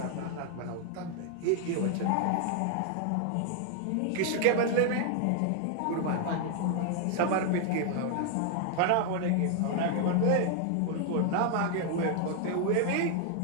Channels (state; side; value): different; both; correlation 0.00